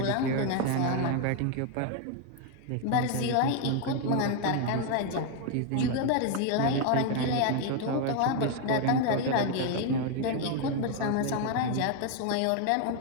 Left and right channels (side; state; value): both; different; correlation 0.01